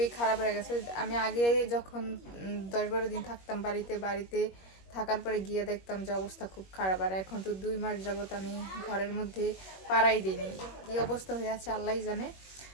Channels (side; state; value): right; late; 21 ms